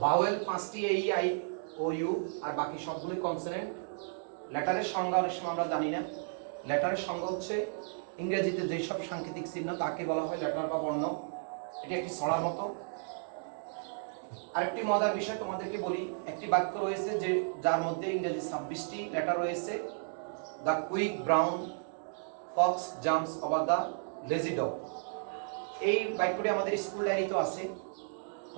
ভাওয়েল পাঁচটি এই, আই, ও, ইউ, আর বাকি সবগুলো কনসোনেন্ট। লেটারের সংজ্ঞা অনেক সময় আমরা জানি না। লেটারের সংজ্ঞা হচ্ছে ইংরেজিতে যেসব সাংকেতিক চিহ্ন তাকে বলা হয় লেটার বা বর্ণ। এটা একটি ছড়ার মতো। আরেকটি মজার বিষয় তোমাদেরকে বলি, একটি বাক্য রয়েছে যে যার মধ্যে ইংরেজি 26টি লেটার রয়েছে। The quick brown Fox jumps over the lazy dog. এই বাক্যটি আমাদের স্কুল ডায়েরিতে আছে,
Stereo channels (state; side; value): silent; left; digital silence